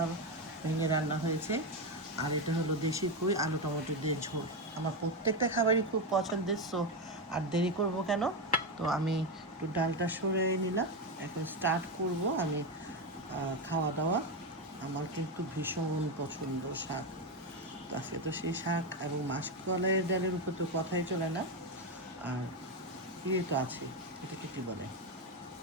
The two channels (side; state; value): both; normal; correlation 0.10